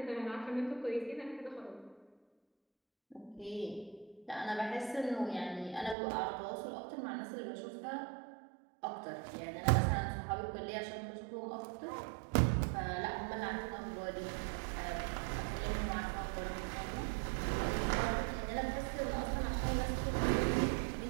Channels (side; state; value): left; drops out; at 6.0 s